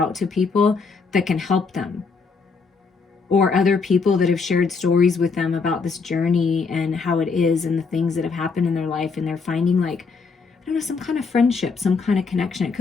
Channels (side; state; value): right; quieter; 4.8 dB